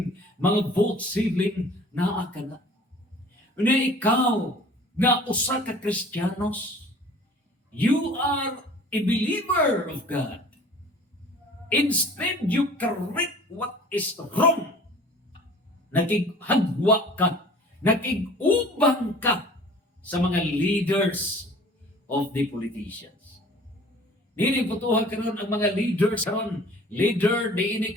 mga vote stealing, naa ka na. Una ikaw, nga usa ka Kristiyanos, you are a believer of God. Instead, you correct what is wrong. Nakig-hagwa ka, nakig-ubang ka sa mga leaders of the politicians. Nini putuhan karon ang mga leaders karon, leader di ini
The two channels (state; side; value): normal; both; correlation 0.48